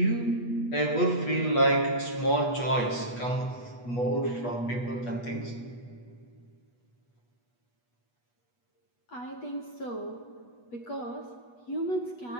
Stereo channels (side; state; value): right; late; 8.3 ms